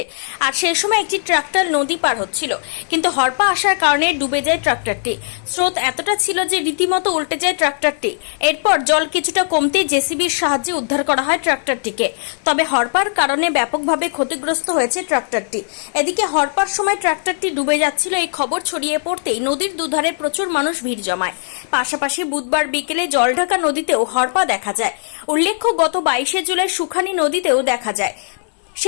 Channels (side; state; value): right; silent; digital silence